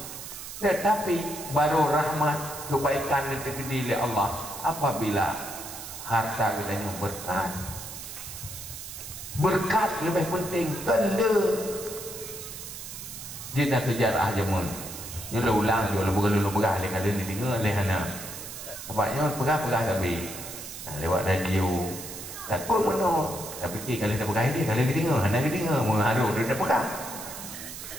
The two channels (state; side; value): noise; right; hiss, 10 dB below the sound